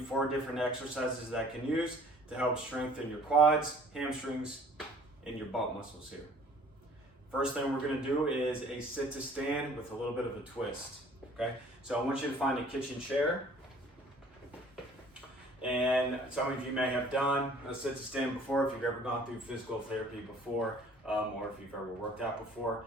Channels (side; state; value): both; normal; correlation 0.53